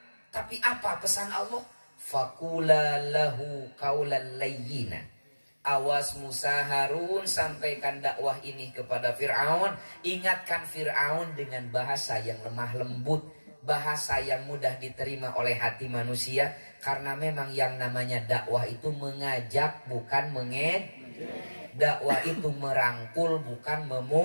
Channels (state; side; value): inverted; both; correlation -1.00